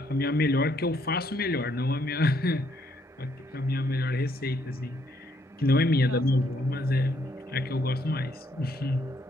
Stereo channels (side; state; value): both; normal; correlation 0.70